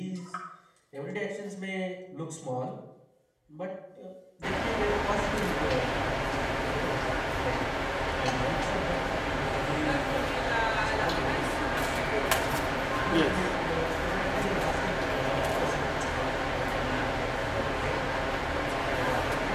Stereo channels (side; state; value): both; identical; correlation 1.00